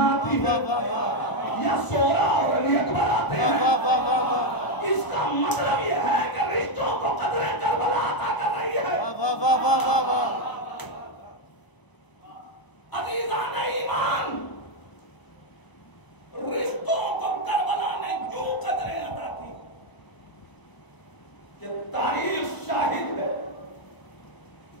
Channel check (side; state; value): right; late; 1.0 ms